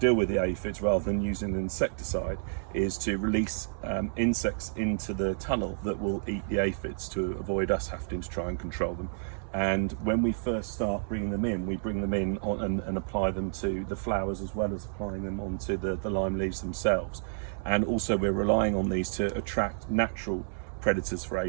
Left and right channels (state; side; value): silent; left; digital silence